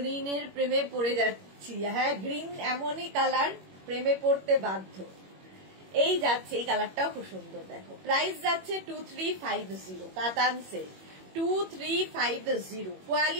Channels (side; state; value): left; late; 21 ms